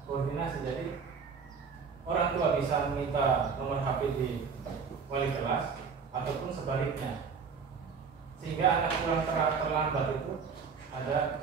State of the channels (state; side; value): quieter; left; 5.7 dB